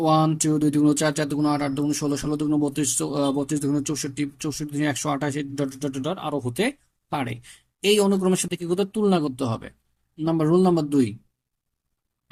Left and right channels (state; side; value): identical; both; correlation 1.00